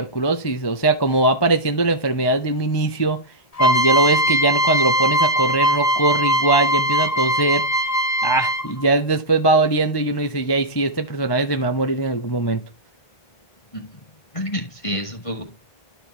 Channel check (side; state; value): right; late; 1.2 ms